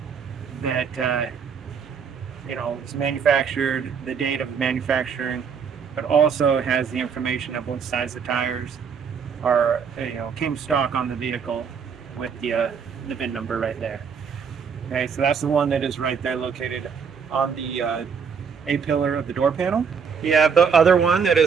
that is manufactured, the date of manufacturing, but also has the information of what size the tires are, came stock on the vehicle with the VIN number right there. Okay, so that's the one that is right there located on the A-pillar of the door panel. You have the other one that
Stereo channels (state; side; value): quieter; left; 6.4 dB